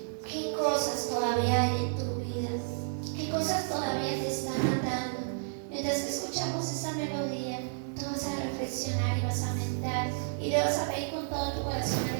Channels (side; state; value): left; silent; 57 dB below the other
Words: qué cosas todavía hay en tu vida, qué cosas todavía te están atando, mientras que escuchamos esta melodía, tú vas a reflexionar y vas a meditar y le vas a pedir con todo tu corazón al